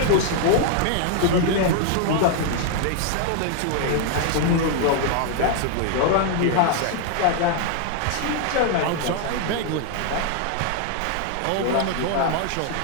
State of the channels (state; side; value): different; both; correlation 0.00